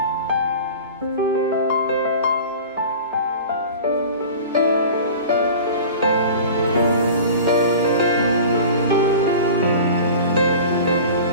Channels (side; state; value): both; inverted; correlation -0.38